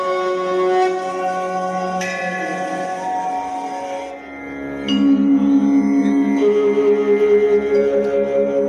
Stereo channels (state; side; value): identical; both; correlation 1.00